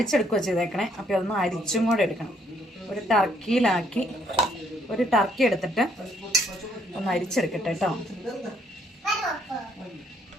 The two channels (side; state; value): both; normal; correlation 0.69